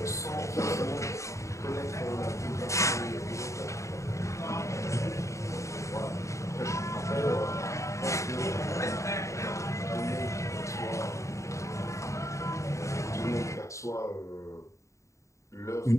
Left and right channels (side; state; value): right; late; 0.15 ms